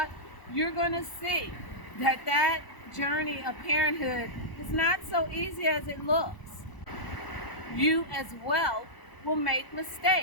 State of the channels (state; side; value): late; right; 1.0 ms